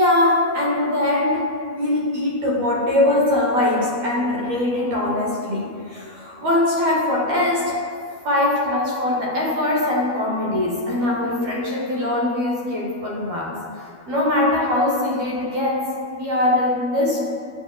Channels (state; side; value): late; left; 12 ms